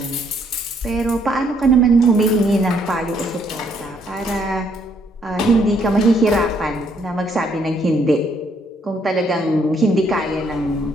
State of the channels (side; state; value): both; normal; correlation 0.69